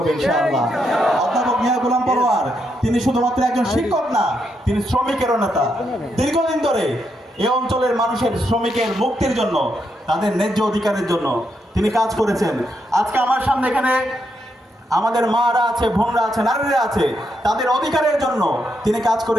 ইনশাআল্লাহ। অধ্যাপক মিয়া গোলাম পরোয়ার তিনি শুধুমাত্র একজন শিক্ষক না, তিনি শ্রমিকেরও নেতা। দীর্ঘদিন ধরে এই অঞ্চলের মানুষের শ্রমিকের মুক্তির জন্য, তাদের ন্যায্য অধিকারের জন্য তিনি কাজ করেছেন। আজকে আমার সামনে এখানে আমাদের মারা আছে, বোনরা আছে, নারীরা আছে, তাদের অধিকারের জন্য তিনি কাজ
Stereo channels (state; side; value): normal; both; correlation 0.80